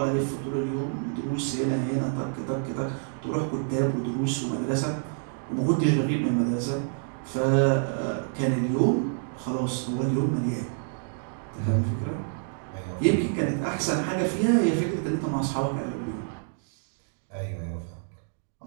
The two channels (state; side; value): silent; left; digital silence